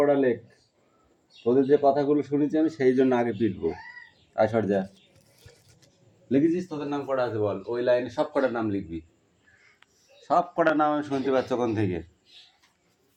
লেখ, তোদের যে কথাগুলো শুনেছি আমি সেই জন্য আগে পিটবো। আসর যা লিখেছিস, তোদের নাম করা আছে বল, ওই লাইনে সব কটার নাম লিখবি, সব কটার নাম আমি শুনতে পাচ্ছি ওখান থেকে।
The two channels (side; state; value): both; identical; correlation 1.00